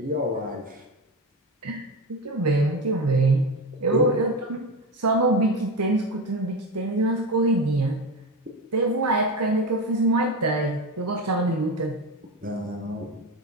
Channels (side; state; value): both; normal; correlation 0.20